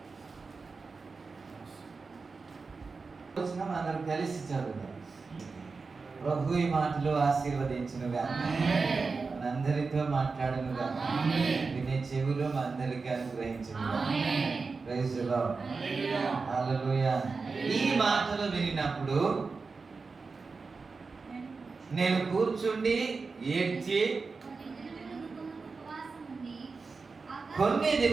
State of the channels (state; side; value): quieter; left; 4.4 dB